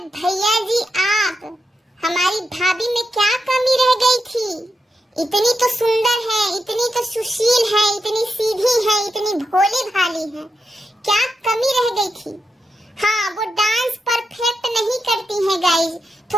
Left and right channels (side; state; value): both; normal; correlation 0.86